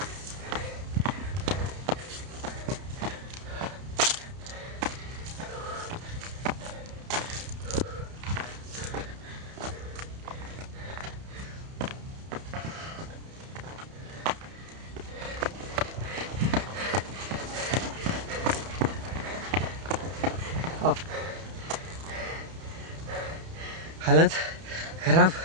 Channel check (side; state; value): left; late; 31 ms